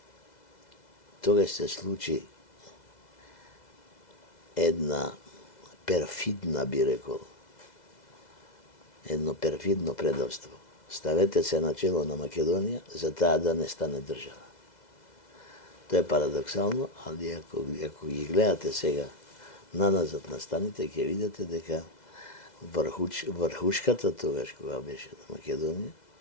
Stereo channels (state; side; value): late; right; 2.0 ms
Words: тогаш се случи една перфидна, би рекол, едно перфидно предавство. Ставете се на чело на Македонија за таа да не стане држава. Тоа е парадоксално, али ако ги гледате сега наназад на станите, ќе видите дека врхушката тогаш кога беше на Македонија